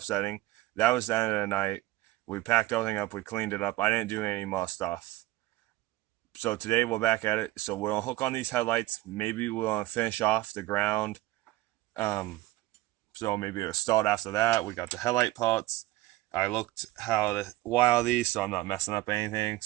That was the end of the night. We packed everything up. We cleaned it up. I didn't do any more stuff. So today we're back at it. So we're gonna hook on these headlights. Maybe we're gonna finish off the ground. So maybe it'll start after that. We got the headlight parts. I looked how to wire these so I'm not messing up anything.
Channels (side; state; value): left; quieter; 17.5 dB